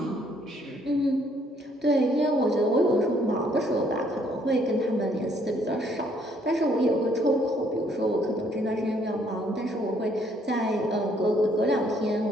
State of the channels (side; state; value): both; normal; correlation 0.66